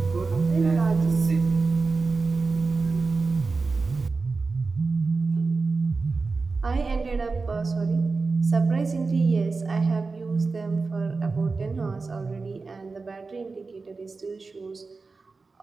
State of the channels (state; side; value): quieter; left; 4.1 dB